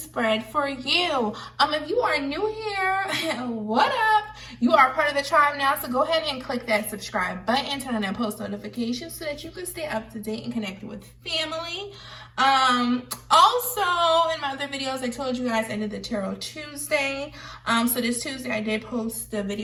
for you. If you are new here, what up? You are part of the tribe now, so go ahead and click that subscribe button, turn on that post notifications so that you can stay up to date and connected with family. Also, in my other videos, I told you guys I did the Tarot Tuesday. So this Tuesday I did post the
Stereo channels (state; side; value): identical; both; correlation 1.00